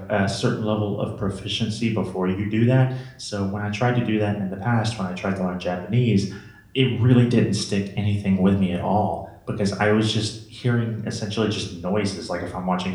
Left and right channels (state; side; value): identical; both; correlation 1.00